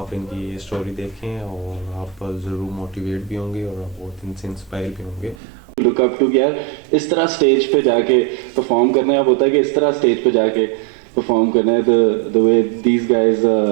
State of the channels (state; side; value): drops out; left; at 5.4 s